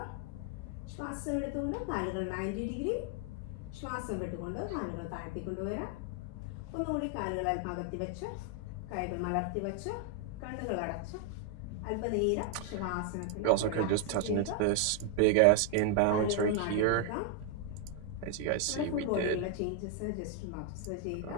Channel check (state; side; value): different; both; correlation 0.00